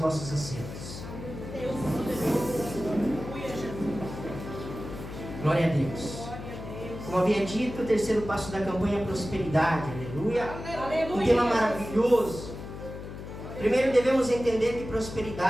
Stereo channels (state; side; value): noise; left; hum, 10 dB below the sound